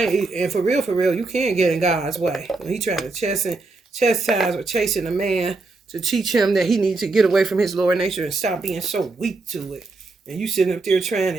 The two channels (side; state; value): left; quieter; 3.5 dB